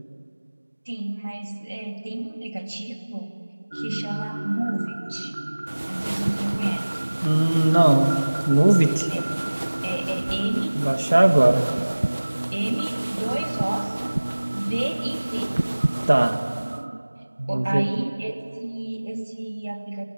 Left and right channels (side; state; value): both; inverted; correlation -1.00